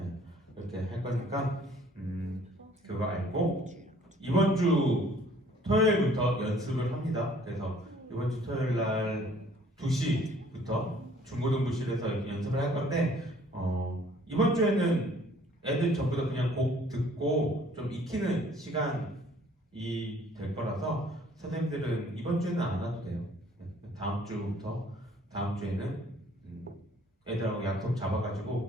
이렇게 할 거니까 그거 알고 이번 주 토요일부터 연습을 합니다. 그래서 이번 주 토요일 날 2시부터 중고등부실에서 연습을 할 건데 이번 주에는 애들 전부 다 그냥 곡 듣고 좀 익히는 시간이 될 거라서 선생님들은 이번 주에는 안 와도 돼요. 다음 주부터 다음 주에는 애들하고 약속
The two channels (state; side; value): normal; both; correlation 0.57